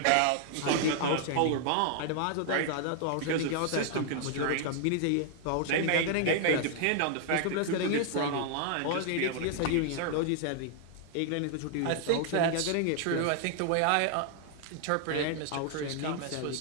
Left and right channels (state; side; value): different; both; correlation 0.00